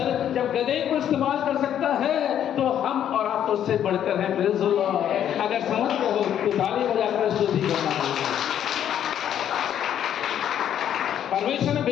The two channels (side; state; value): right; quieter; 10.1 dB